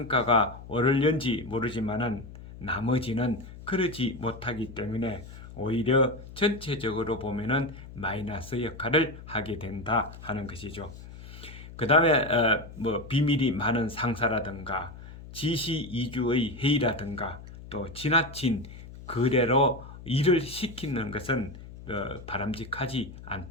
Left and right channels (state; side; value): noise; left; hum, 15 dB below the sound